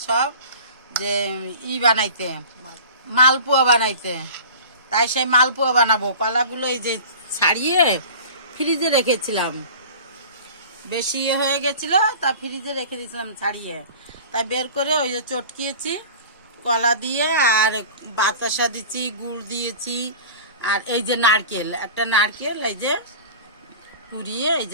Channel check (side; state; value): both; inverted; correlation -0.39